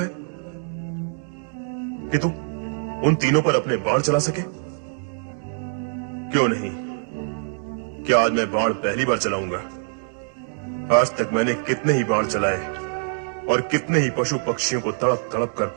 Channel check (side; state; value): left; silent; digital silence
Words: कि तू उन तीनों पर अपने बाण चला सके? क्यों नहीं? क्या आज मैं बाण पहली बार चलाऊंगा? आज तक मैंने कितने ही बाण चलाए और कितने ही पशु पक्षियों को तड़प तड़प कर